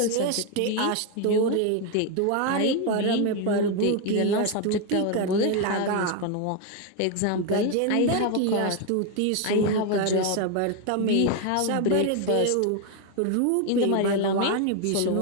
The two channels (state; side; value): different; both; correlation 0.01